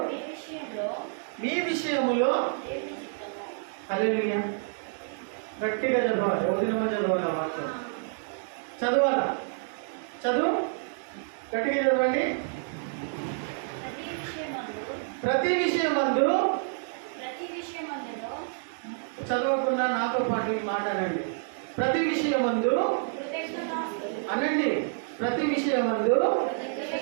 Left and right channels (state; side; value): silent; left; digital silence